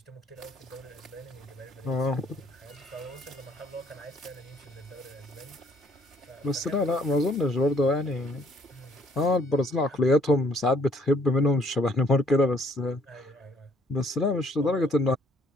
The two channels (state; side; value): normal; both; correlation 0.63